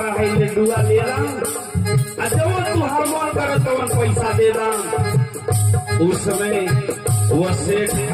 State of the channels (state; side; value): identical; both; correlation 1.00